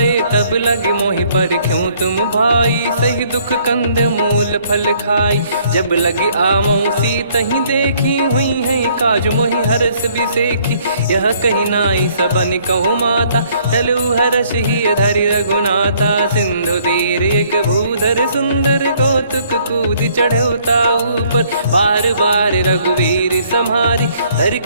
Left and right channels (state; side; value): inverted; both; correlation -0.63